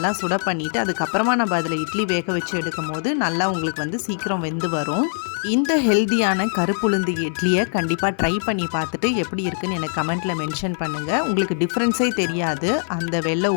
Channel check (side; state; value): right; silent; digital silence